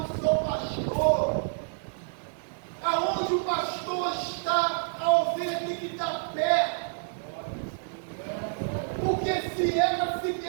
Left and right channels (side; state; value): left; silent; 59 dB below the other